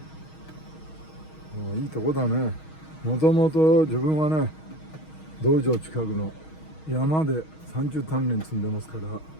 いいとこだね。もともと自分はね、道場近くの山で30鍛錬積んでますから、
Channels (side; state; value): right; late; 6.3 ms